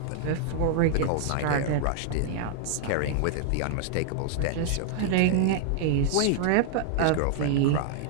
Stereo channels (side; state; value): both; different; correlation -0.01